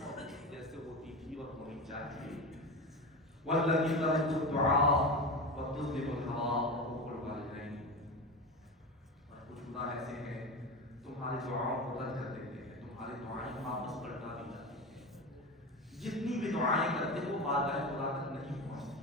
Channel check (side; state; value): both; normal; correlation 0.24